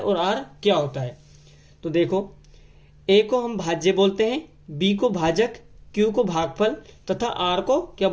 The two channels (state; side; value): identical; both; correlation 1.00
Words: और r क्या होता है। तो देखो, a को हम भाज्य बोलते हैं, b को भाजक, q को भागफल तथा r को क्या